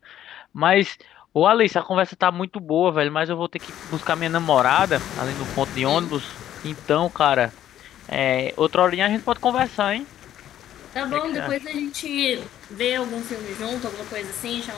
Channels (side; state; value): right; quieter; 11.7 dB